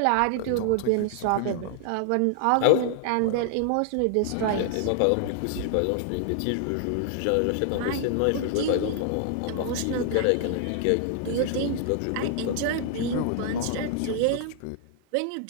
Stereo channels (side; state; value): both; different; correlation -0.01